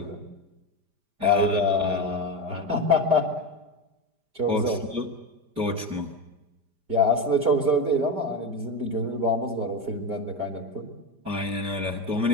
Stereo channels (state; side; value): late; left; 5.0 ms